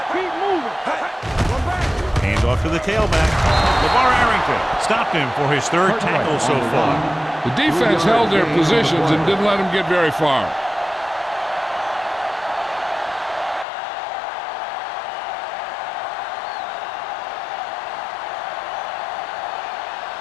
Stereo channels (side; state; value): right; drops out; at 13.7 s